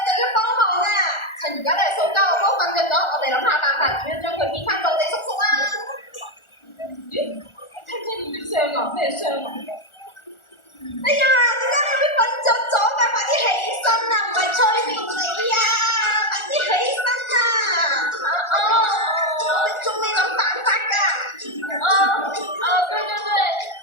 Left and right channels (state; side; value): late; right; 1.4 ms